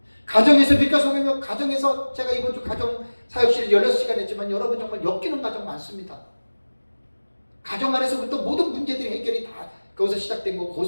가정에서 빛과 소금이며 가정에서 제가 이번 주 가정 사역실을 16시간 했지만 여러분 정말 엮이는 가정 많습니다. 가정 안에서부터 모든 문제들이 해결이 다 거기서 시작된 거고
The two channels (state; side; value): inverted; both; correlation -1.00